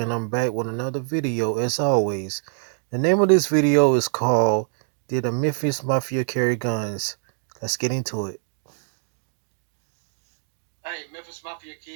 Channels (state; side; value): silent; left; digital silence